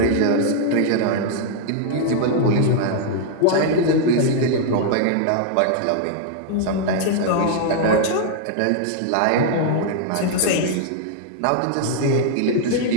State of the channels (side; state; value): both; different; correlation -0.01